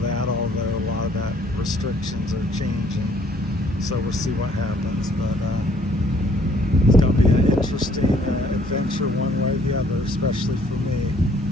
although a lot of that restrictions are changing. So we'll see what happens. But it's going to be an interesting adventure one way or the other, especially for me.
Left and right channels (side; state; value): both; normal; correlation 0.62